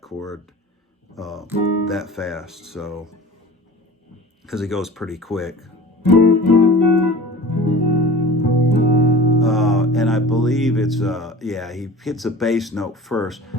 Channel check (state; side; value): normal; both; correlation 0.38